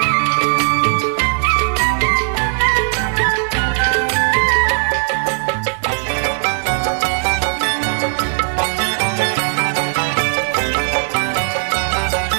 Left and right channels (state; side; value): silent; left; digital silence